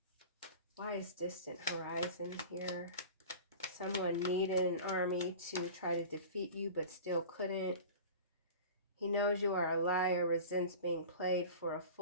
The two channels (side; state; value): both; inverted; correlation -0.36